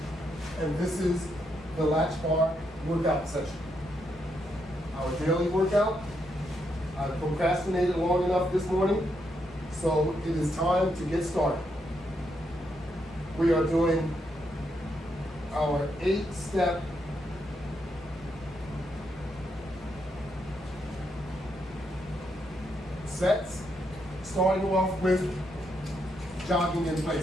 and this is the Latchbar workout session. Our daily workout. I procrastinated long enough this morning, so it is time to get started. We are doing our 8-step sets, starting off with jogging in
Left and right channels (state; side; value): normal; both; correlation 0.79